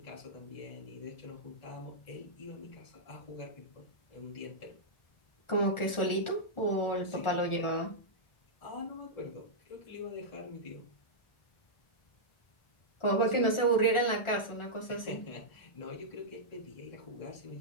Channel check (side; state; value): right; late; 1.4 ms